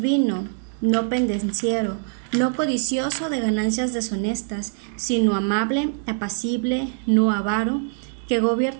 no pendenciero, no codicioso de ganancias deshonestas, sino amable, apacible, no avaro, que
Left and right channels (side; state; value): left; silent; digital silence